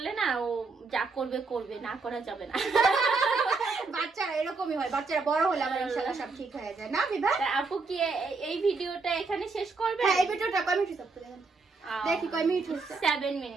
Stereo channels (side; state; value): left; quieter; 4.1 dB